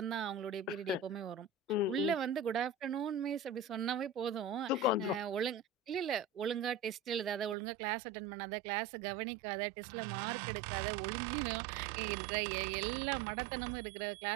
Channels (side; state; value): left; drops out; at 7.6 s